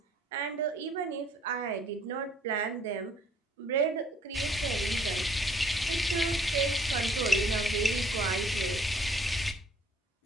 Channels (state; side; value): normal; both; correlation 0.59